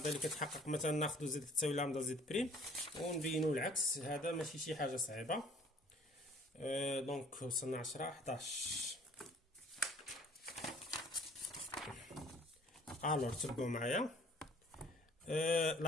اللي كتحقق مثلا ناخذ زد كتساوي لامدا زد بريم ونبينو العكس. هذا ماشي شي حاجه صعيبه. دونك وصلنا 10 11. الوغ تبعوا معايا.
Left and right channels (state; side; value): normal; both; correlation 0.54